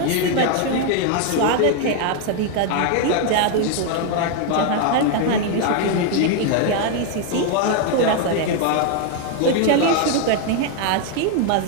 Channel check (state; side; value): different; both; correlation 0.01